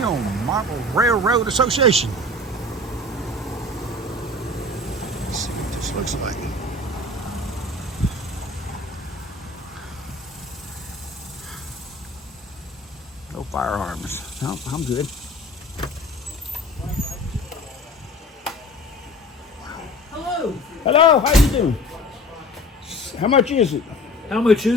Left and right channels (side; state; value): both; normal; correlation 0.41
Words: Model Railroad Association. Let's see what this looks like. No firearms. No, I'm good. Hello. Hello, how you doing? How much is it? How much